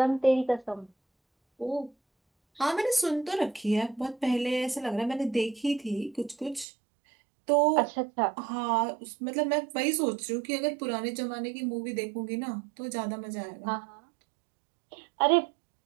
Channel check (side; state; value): left; drops out; at 6.7 s